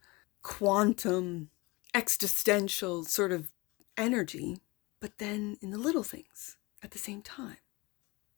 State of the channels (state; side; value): quieter; right; 24.4 dB